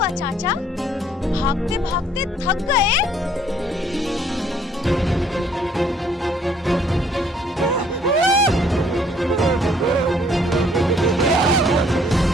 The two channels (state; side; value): normal; both; correlation 0.62